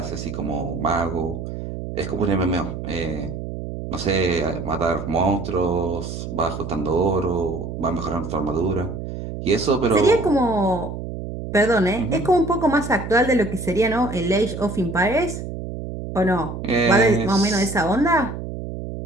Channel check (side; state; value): right; noise; hum, 7 dB below the sound